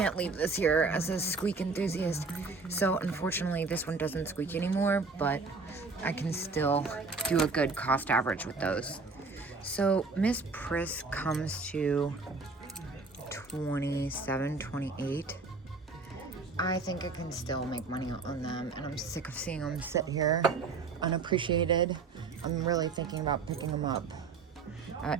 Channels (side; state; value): left; quieter; 4.3 dB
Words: leave this here as a squeak enthusiast. So, unfortunately, this one doesn't squeak anymore, but I can still do a good cost average with those. So, Miss Priss comes to 27, 28. I think I can still make money on them, and I'm sick of seeing them sit here unappreciated. I'm really thinking about picking them up.